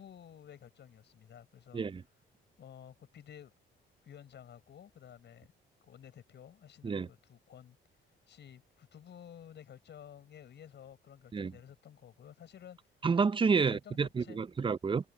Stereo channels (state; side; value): quieter; left; 4.6 dB